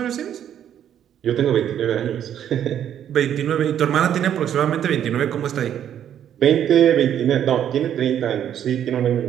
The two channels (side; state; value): left; quieter; 10.0 dB